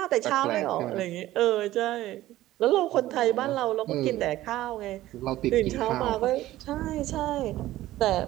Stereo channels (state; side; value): quieter; left; 15.4 dB